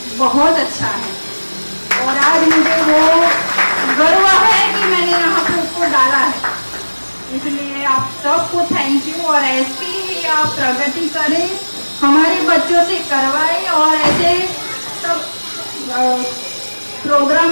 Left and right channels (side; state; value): both; inverted; correlation -1.00